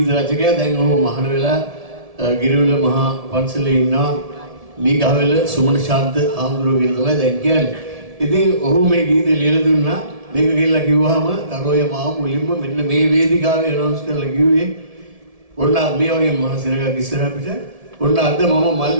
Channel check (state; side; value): late; left; 1.7 ms